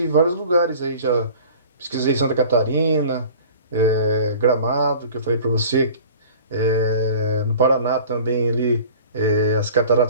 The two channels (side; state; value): both; inverted; correlation -0.45